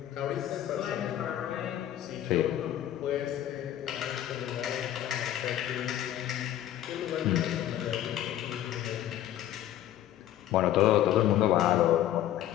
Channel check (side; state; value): right; quieter; 12.2 dB